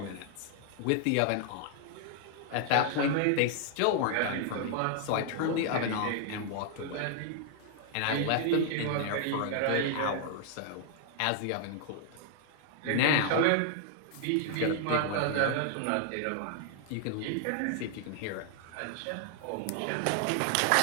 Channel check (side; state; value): both; different; correlation 0.00